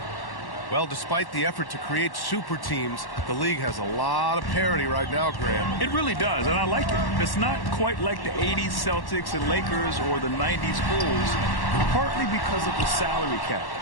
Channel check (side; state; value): right; late; 1.1 ms